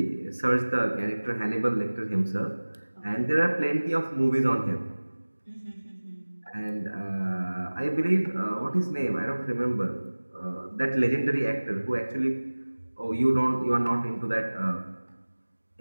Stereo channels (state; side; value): inverted; both; correlation -1.00